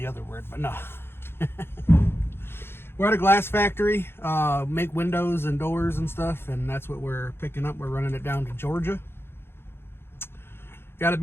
other word, but no. We're at a glass factory. Make windows and doors and stuff, and that's what we're picking up. We're running it down to Georgia. Got to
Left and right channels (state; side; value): late; right; 0.11 ms